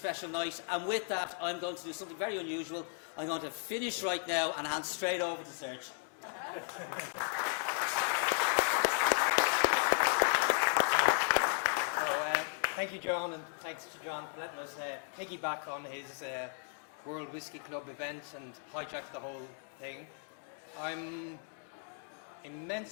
night. And with that, I'm going to do something very unusual. I'm going to finish right now and hand straight over to Serge. Thank you, John, and thanks to John for letting us piggyback on his World Whisky Club event and hijack the whole thing. I'm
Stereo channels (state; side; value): silent; right; 54 dB below the other